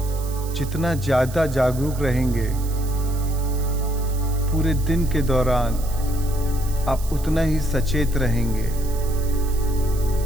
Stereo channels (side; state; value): right; noise; hiss, 16 dB below the sound